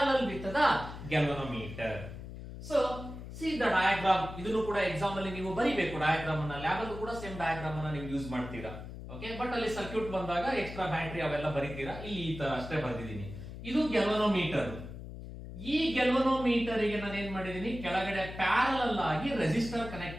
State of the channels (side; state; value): left; noise; hum, 11 dB below the sound